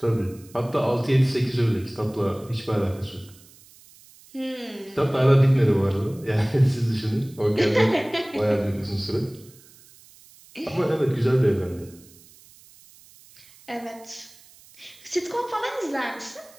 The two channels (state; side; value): noise; right; hiss, 25 dB below the sound